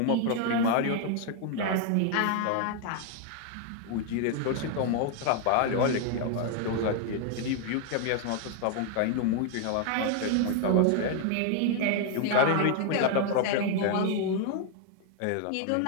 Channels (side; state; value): both; different; correlation 0.00